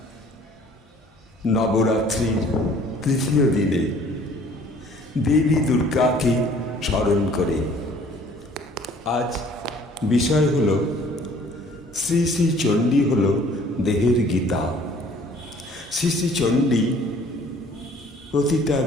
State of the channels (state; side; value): normal; both; correlation 0.54